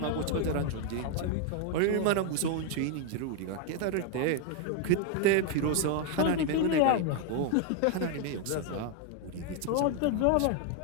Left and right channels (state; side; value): different; both; correlation 0.01